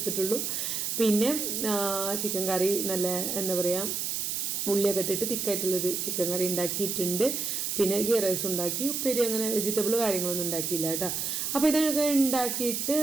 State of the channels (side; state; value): right; noise; hiss, 1 dB below the sound